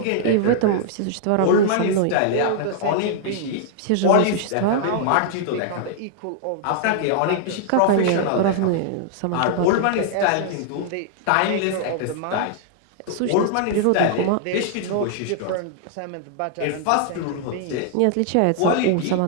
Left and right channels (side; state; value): both; different; correlation -0.01